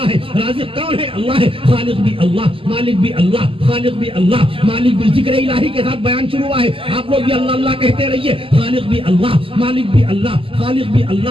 ہے. رازق کون ہے؟ اللہ ہے. خالق بھی اللہ, مالک بھی اللہ, خالق بھی اللہ, مالک بھی. ذکر الہی کے ساتھ بیان شروع ہوا ہے, آپ لوگ بھی اللہ اللہ کہتے رہیے. خالق بھی اللہ, مالک بھی اللہ, خالق بھی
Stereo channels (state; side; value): late; left; 0.26 ms